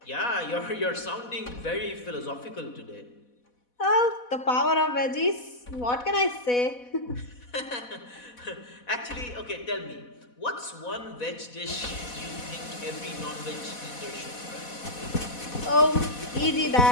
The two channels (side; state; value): right; late; 4.1 ms